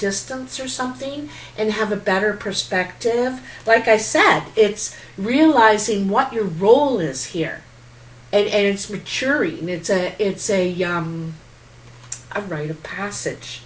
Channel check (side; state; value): both; identical; correlation 1.00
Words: or something and have a better perspective. Like I said, it's realizing what your role is here, and it's maturing. It's a rite of passage,